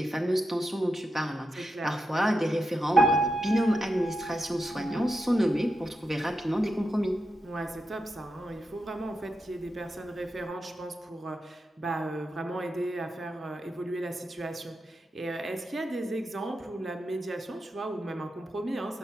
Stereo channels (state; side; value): normal; both; correlation 0.87